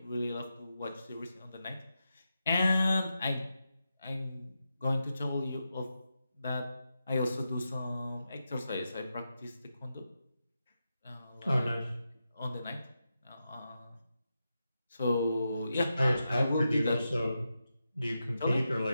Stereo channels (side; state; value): both; inverted; correlation -0.88